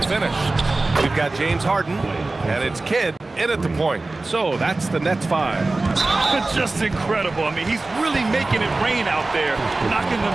We've got James Harden, and it's Kidd in at the point. So that's the Nets 5. Just incredible. I mean, he's really making it rain out there, knocking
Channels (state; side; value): quieter; left; 3.2 dB